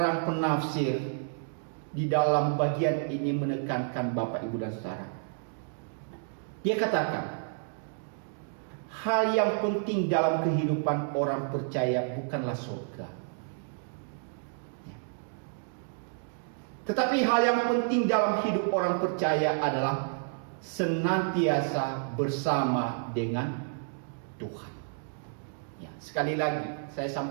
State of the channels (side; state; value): left; silent; digital silence